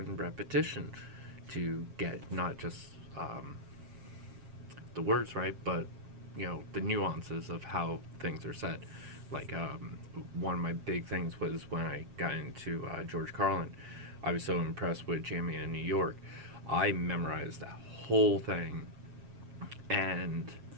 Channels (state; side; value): late; left; 7.4 ms